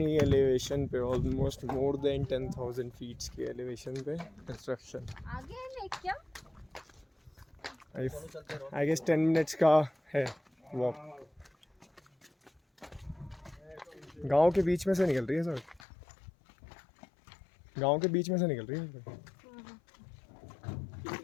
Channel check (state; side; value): drops out; right; at 15.9 s